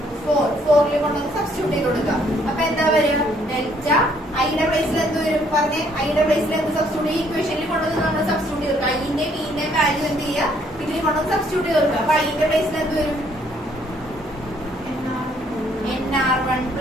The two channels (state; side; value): normal; both; correlation 0.66